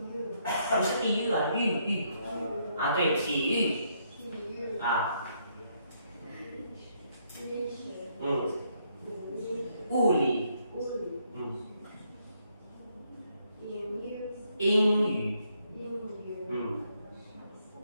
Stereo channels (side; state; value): both; inverted; correlation -0.73